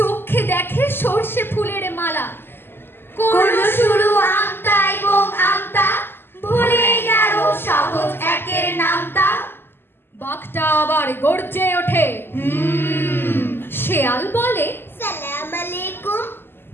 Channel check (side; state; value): right; late; 0.11 ms